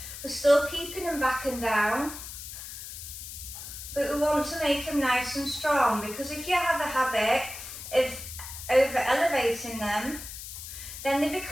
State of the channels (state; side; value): noise; left; hiss, 10 dB below the sound